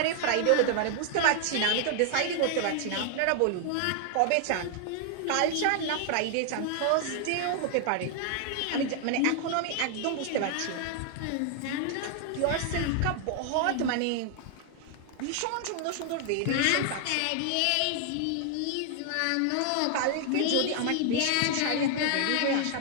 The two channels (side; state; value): both; different; correlation 0.00